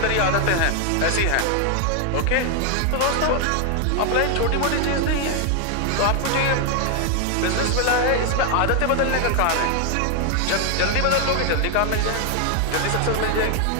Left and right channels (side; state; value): both; different; correlation 0.00